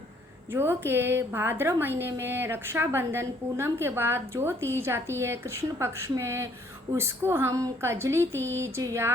जो कि भाद्र महीने में रक्षाबंधन पूनम के बाद जो तीज आती है कृष्ण पक्ष में, उसको हम कजली तीज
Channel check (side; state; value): both; normal; correlation 0.64